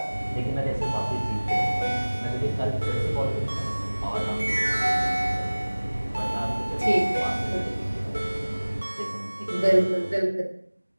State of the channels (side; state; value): both; inverted; correlation -1.00